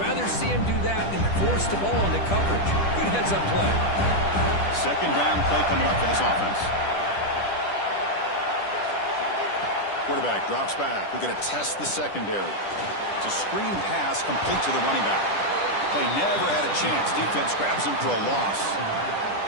see him do that than force the ball into coverage. Good heads-up play. Second down play coming up for this offense. Quarterback drops back. We're going to test the secondary. It's a screen pass complete to the running back. Play never had a chance. Defense grabs him for a loss.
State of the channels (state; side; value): late; right; 10 ms